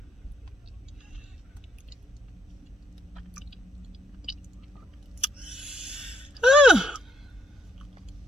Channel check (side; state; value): both; normal; correlation 0.74